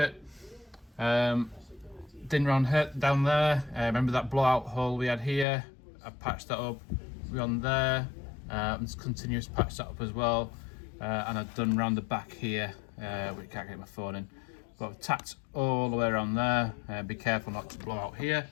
Din round down there, remember that blowout hole we had here? I patched that up. We're on there, and continuous patch that up as well. And I've done round the back here, we can't get my phone in, but I've tacked all the way around there. Be careful not to blow out here,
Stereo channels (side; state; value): right; drops out; at 5.5 s